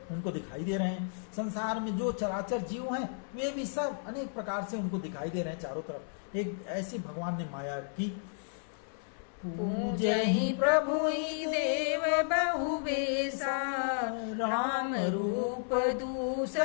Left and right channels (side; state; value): right; silent; 56 dB below the other